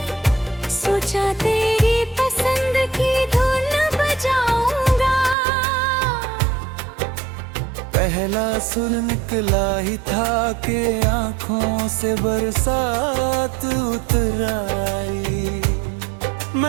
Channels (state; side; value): drops out; left; at 5.4 s